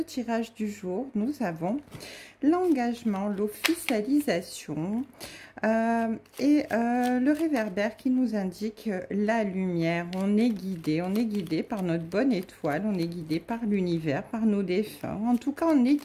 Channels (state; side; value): identical; both; correlation 1.00